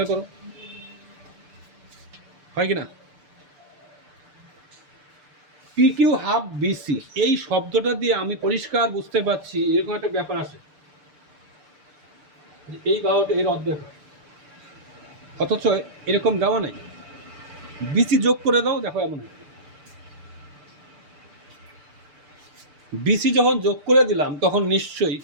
করো, হয় কিনা? পি কিউ হাফ বিসি এই শব্দটা দিয়ে আমি পরিষ্কার বুঝতে পারছি এরকম একটা ব্যাপার আছে, এই বাহুটা এর অর্ধেক হয়, অথচ এরকম দেওয়া নাই। বিসি যোগ করে দাও, দেখো এমন হয়। বিসি যখন যোগ করে দিলাম তখন নিশ্চয়ই,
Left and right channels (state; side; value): late; left; 6.8 ms